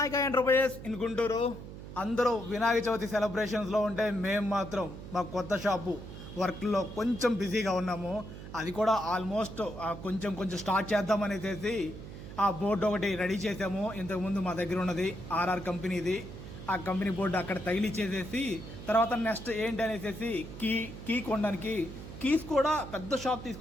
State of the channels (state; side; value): noise; right; hum, 12 dB below the sound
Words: enterprises in Guntur. అందరూ వినాయక చవితి సెలబ్రేషన్స్లో ఉంటే మేము మాత్రం మా కొత్త షాపు వర్క్లో కొంచెం బిజీగా ఉన్నాము. అది కూడా ఆల్మోస్ట్ కొంచెం కొంచెం స్టార్ట్ చేద్దామనేసి ఆ బోర్డు ఒకటి రెడీ చేసాము. ఇంతకుముందు మా దగ్గర ఉన్నది ఆర్ఆర్ కంపెనీది. ఆ కంపెనీ బోర్డు అక్కడ తగిలిచ్చేసేసి తర్వాత నెక్స్ట్ ఏంటి అనేసి కీ కొనడానికి కీస్ కూడా పెద్ద షాప్